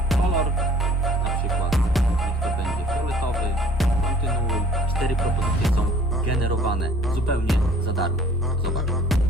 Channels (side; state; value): both; normal; correlation 0.53